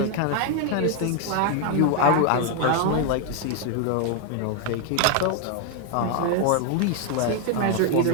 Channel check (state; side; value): different; both; correlation 0.00